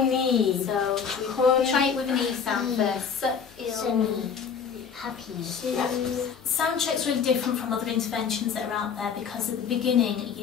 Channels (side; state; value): right; quieter; 6.7 dB